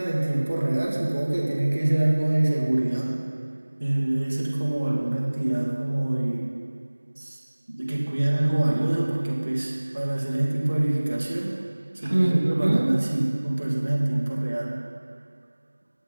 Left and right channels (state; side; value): inverted; both; correlation -1.00